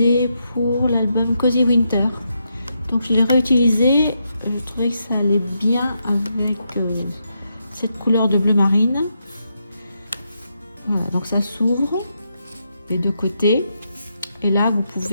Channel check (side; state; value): both; inverted; correlation -0.82